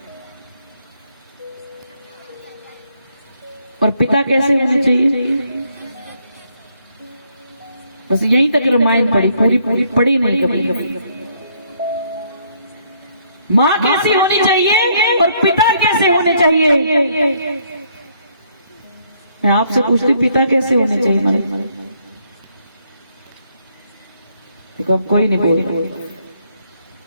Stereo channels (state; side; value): inverted; both; correlation -0.69